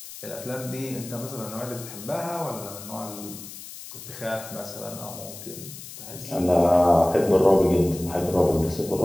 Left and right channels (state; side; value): noise; left; hiss, 13 dB below the sound